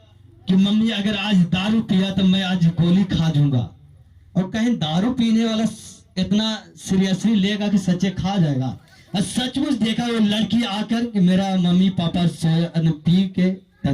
कि मम्मी अगर आज दारू पिया तो मैं आज गोली खा दूंगा, और कहीं दारू पीने वाला इतना सीरियसली लेगा कि सच्चे खा जाएगा। और सचमुच देखा वो लड़की आकर कि मेरा मम्मी पापा पी के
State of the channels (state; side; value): identical; both; correlation 1.00